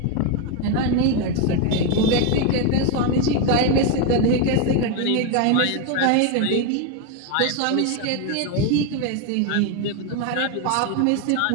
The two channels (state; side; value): different; both; correlation 0.02